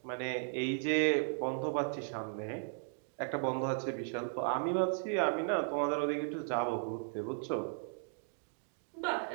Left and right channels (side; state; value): left; silent; digital silence